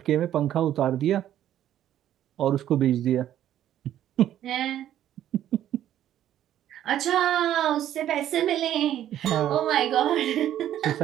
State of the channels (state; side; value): quieter; left; 11.6 dB